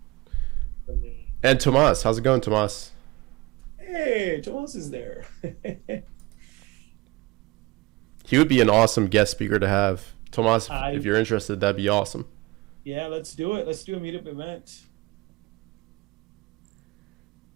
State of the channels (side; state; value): left; quieter; 22.3 dB